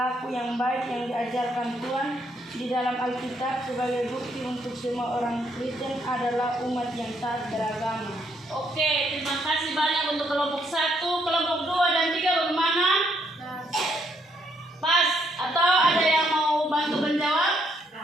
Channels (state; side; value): normal; both; correlation 0.72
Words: yang baik yang diajarkan Tuhan di dalam Alkitab sebagai bukti untuk semua orang Kristen adalah umat yang taat beragama. Oke, terima kasih banyak untuk kelompok 1, kelompok 2 dan 3 bagaimana? Pas atau ada yang mau bantu menjawab?